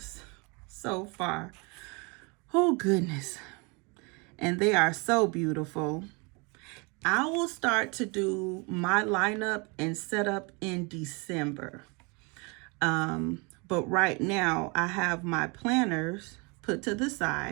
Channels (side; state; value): left; quieter; 30.2 dB